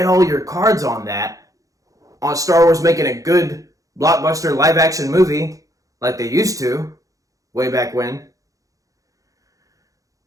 all your cards on that, on Star Wars making a good blockbuster live-action movie, like they used to, way back when,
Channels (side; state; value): left; late; 0.16 ms